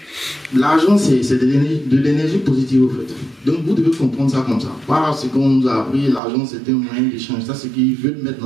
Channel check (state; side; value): drops out; left; at 6.2 s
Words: l'argent, c'est de l'énergie positive au fait. Donc vous devez comprendre ça comme ça. Pas ce qu'on nous a appris, l'argent c'est un moyen d'échange. Ça, c'est ce qu'ils veulent mettre